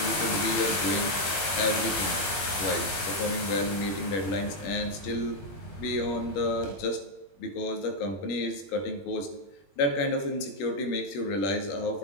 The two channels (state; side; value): late; right; 20 ms